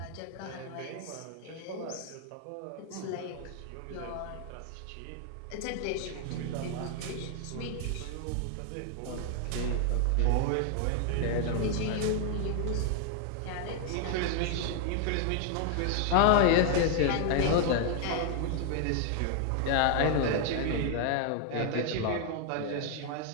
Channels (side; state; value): both; different; correlation 0.00